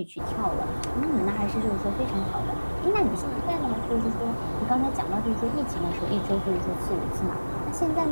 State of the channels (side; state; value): both; inverted; correlation -1.00